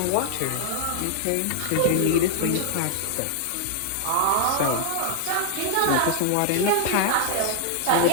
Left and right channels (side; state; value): both; different; correlation 0.00